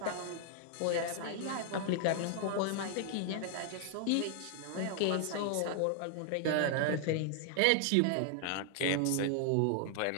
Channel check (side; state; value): both; different; correlation 0.00